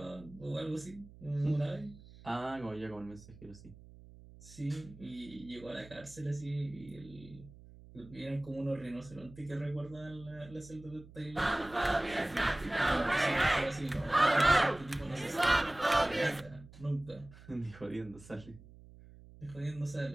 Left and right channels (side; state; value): right; noise; hum, 20 dB below the sound